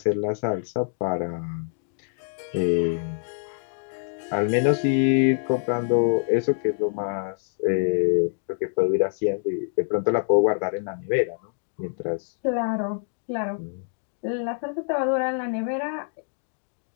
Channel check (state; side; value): silent; right; digital silence